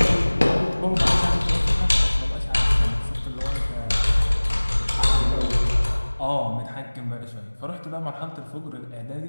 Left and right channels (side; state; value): both; inverted; correlation -1.00